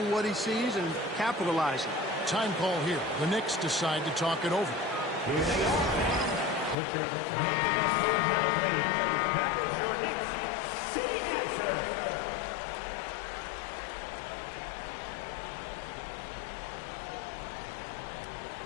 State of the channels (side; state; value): right; drops out; at 6.8 s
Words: what he sees and capitalizing. Time call here. The Knicks decide to talk it over. Here they are. Picture making us move now, please. That was your Knicks sitting answer.